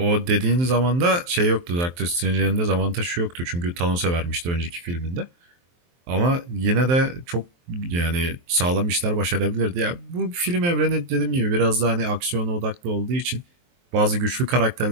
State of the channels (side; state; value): left; late; 23 ms